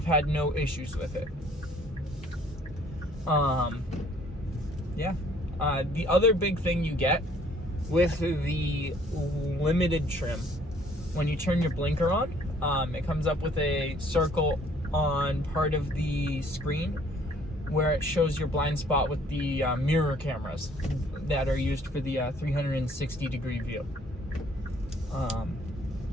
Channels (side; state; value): both; normal; correlation 0.60